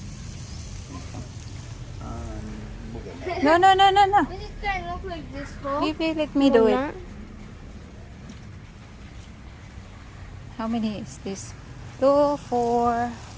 We'll get that. No. Does it kind of look like this though? Maybe let me do it. How many is this? 2, 4,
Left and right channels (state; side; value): identical; both; correlation 1.00